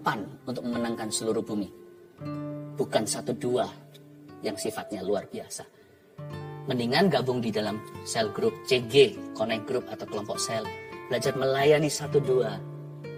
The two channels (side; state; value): both; identical; correlation 1.00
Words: untuk memenangkan seluruh bumi. Bukan 1-2 yang sifatnya luar biasa. Mendingan gabung di dalam sel grup CG, connect group atau kelompok sel. Belajar melayani 1-2.